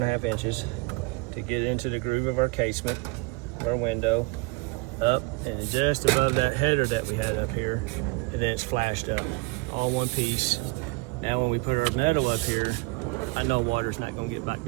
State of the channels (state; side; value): quieter; left; 26.0 dB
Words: inches, to get into the groove of our casement, our window, up, and just above that header that we had up here, and then it's flashed up, all one piece. Now when we put our metal up here, I know water's not gonna get back